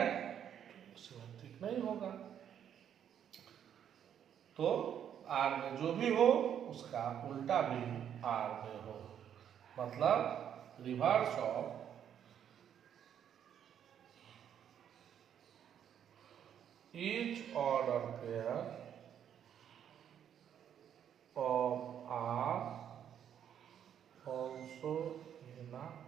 तो सिमेट्रिक नहीं होगा। तो आर में जो भी हो उसका उल्टा भी आर में हो, मतलब reverse of each order pair of R also in a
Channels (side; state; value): left; quieter; 9.2 dB